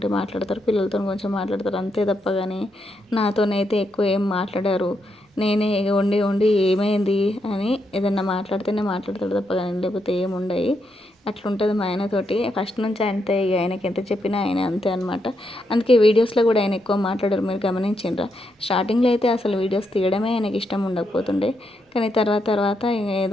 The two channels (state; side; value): normal; both; correlation 0.81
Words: మాట్లాడతారు, పిల్లలతో కొంచెం మాట్లాడతారు, అంతే తప్ప కానీ నాతోనైతే ఎక్కువ ఏం మాట్లాడారు. నేనే ఉండి ఏమైంది అని ఏదన్నా మాట్లాడితేనే మాట్లాడతాడు తప్ప కానీ, లేకపోతే ఏముండయి. అట్లుంటుంది మా ఆయనతోటి ఫస్ట్ నుంచి. అంతే, ఇక ఆయనకి ఎంత చెప్పినా ఆయన అంతే అనమాట. అందుకే వీడియోస్లో కూడా ఆయన ఎక్కువ మాట్లాడరు, మీరు గమనించిండ్రా? స్టార్టింగ్లో అయితే అసలు వీడియోస్ తీయడమే ఆయనకి ఇష్టం ఉండకపోతుండే, కానీ తర్వాత